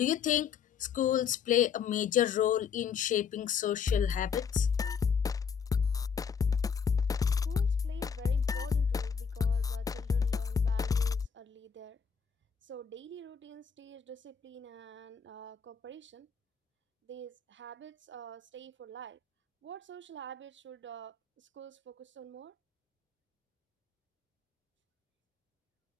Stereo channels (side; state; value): right; quieter; 6.5 dB